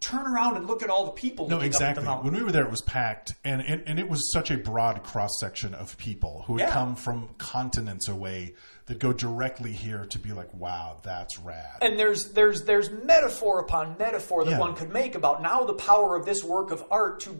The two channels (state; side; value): inverted; both; correlation -1.00